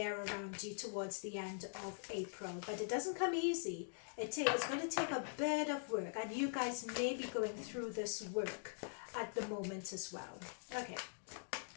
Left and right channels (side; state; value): right; silent; digital silence